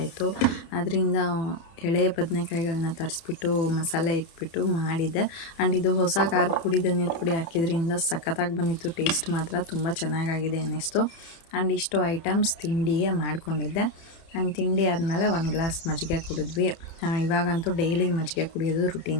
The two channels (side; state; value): right; late; 30 ms